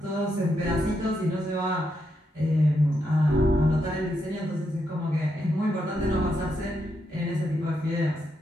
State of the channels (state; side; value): normal; both; correlation 0.81